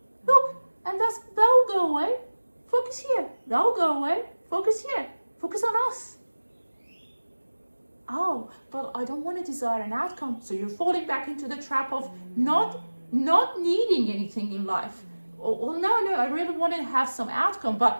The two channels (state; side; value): inverted; both; correlation -1.00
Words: Look, and that'll go away. Focus here. That'll go away. Focus here. Focus on us. Oh, but I don't want to desire an outcome. So you're falling back into the trap of not needing anything in life. Well, no, I really want to have some outcome,